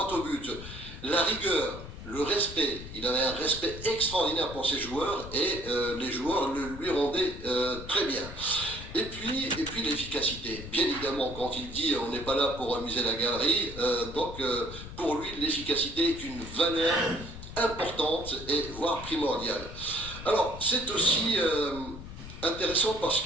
au but. La rigueur, le respect, il avait un respect extraordinaire pour ses joueurs et les joueurs le lui rendaient très bien. Et puis l'efficacité. Bien évidemment, quand il dit on n'est pas là pour amuser la galerie, donc pour lui l'efficacité est une valeur importante et voire primordiale. Alors c'est aussi intéressant parce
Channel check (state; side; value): noise; left; rumble, 12 dB below the sound